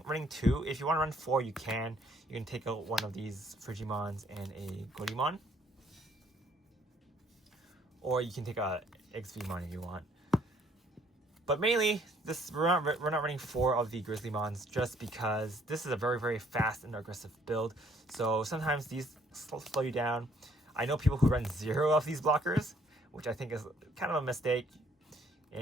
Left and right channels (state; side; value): normal; both; correlation 0.63